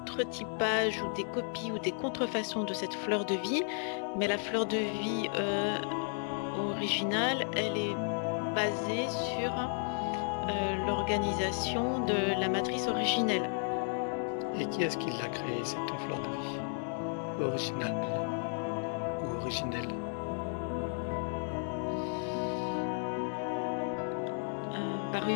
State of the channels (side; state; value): right; silent; 55 dB below the other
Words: ou des copies ou des contrefaçons de cette fleur de vie, mais la fleur de vie originale, elle est basée sur l'organisation de la matrice originelle. Et qui est-ce qui l'a créée, cette fleur de vie? Originale ou originelle? Par